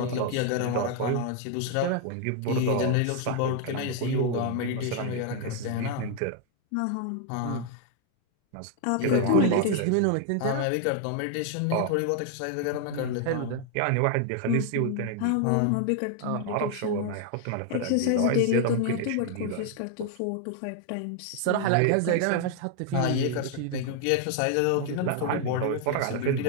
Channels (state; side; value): different; both; correlation 0.00